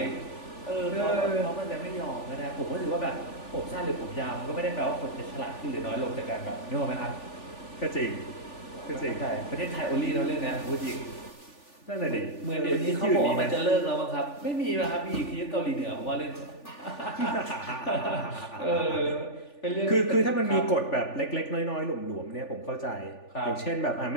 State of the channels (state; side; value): late; right; 3.4 ms